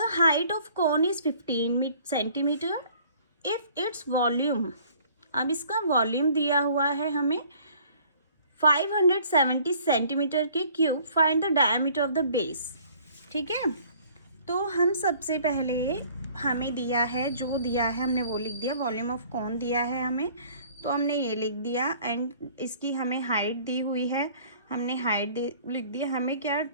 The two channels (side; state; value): both; inverted; correlation -0.54